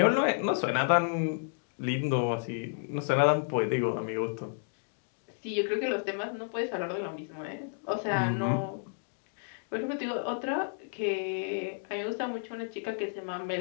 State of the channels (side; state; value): right; silent; digital silence